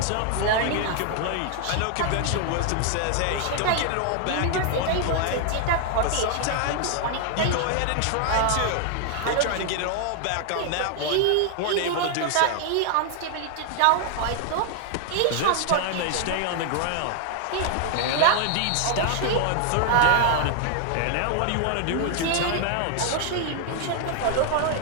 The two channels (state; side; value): different; both; correlation 0.00